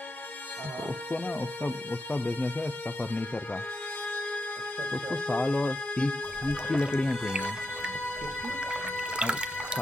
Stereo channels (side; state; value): both; normal; correlation 0.85